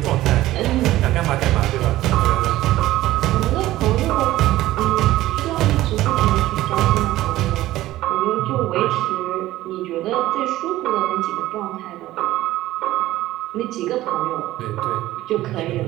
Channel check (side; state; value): left; quieter; 15.7 dB